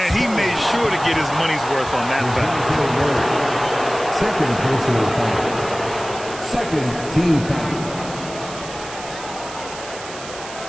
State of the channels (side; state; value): right; noise; hiss, 13 dB below the sound